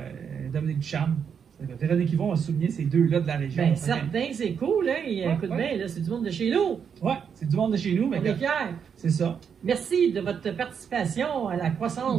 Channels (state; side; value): quieter; left; 7.2 dB